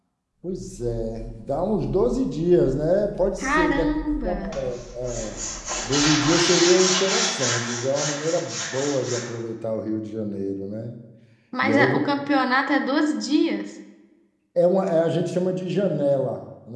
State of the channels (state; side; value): identical; both; correlation 1.00